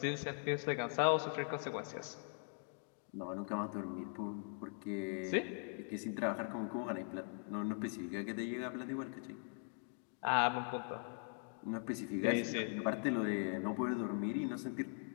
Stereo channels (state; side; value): silent; right; 50 dB below the other